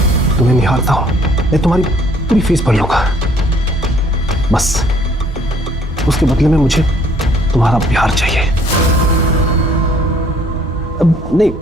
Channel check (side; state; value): both; normal; correlation 0.61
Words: तुम्हें निहारता हूँ। मैं तुम्हारी पूरी फीस भर लूंगा, बस उसके बदले में मुझे तुम्हारा प्यार चाहिए। अब नहीं,